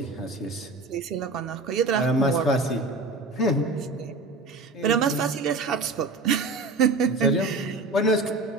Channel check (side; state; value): left; quieter; 3.2 dB